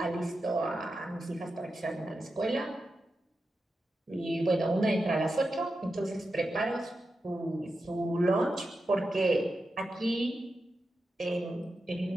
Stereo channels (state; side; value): normal; both; correlation 0.90